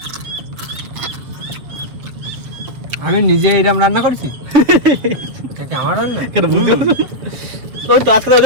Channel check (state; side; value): late; left; 7.6 ms